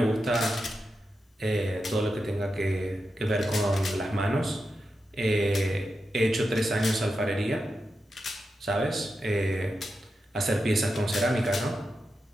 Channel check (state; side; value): normal; both; correlation 0.89